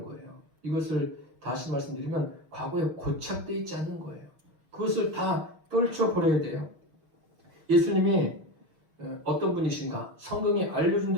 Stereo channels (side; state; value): left; late; 6.4 ms